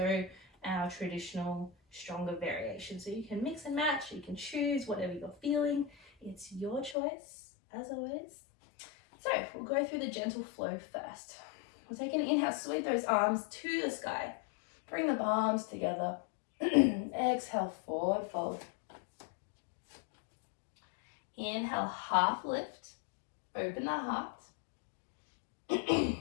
our traditional stronger variation. So you can mix and match, you can choose whatever you're feeling. It's your choice, as always. So we'll go through the gentle flow first. We'll take an inhale, sweep those arms to the sky. Bring the palms together. Exhale, forward fold. Inhale, half lift. Open the heart.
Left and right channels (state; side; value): drops out; right; at 7.0 s